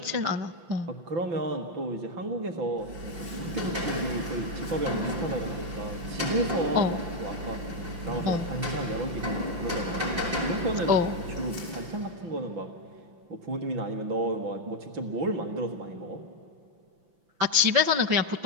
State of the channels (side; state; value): left; late; 5.9 ms